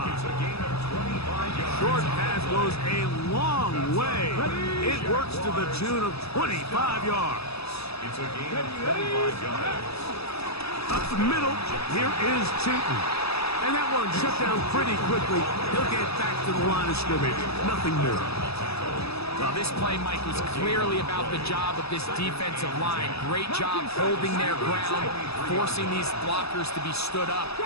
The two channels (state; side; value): late; right; 0.78 ms